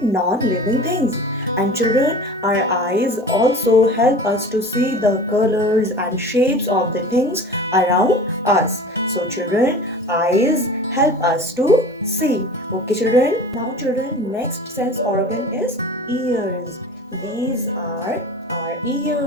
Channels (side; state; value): both; normal; correlation 0.38